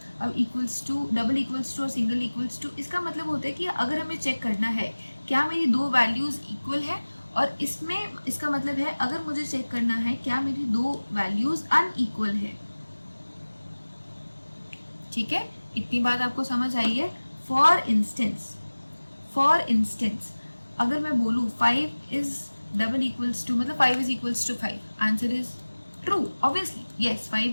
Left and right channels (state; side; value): inverted; both; correlation -1.00